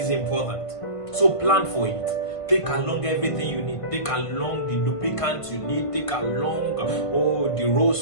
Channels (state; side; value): late; right; 1.5 ms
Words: important. So plan for it. Take along everything you need. Take along the lubricant you need. Take along the